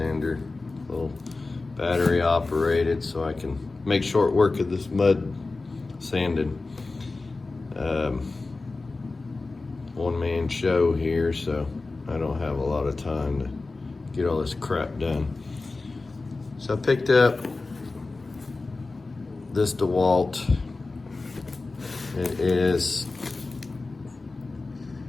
a little battery operated, so I can make short work of this mud sanding. One man show here, so I don't have a lot of time to get all this crap done. So I picked up this Dewalt. It is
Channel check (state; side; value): quieter; right; 3.6 dB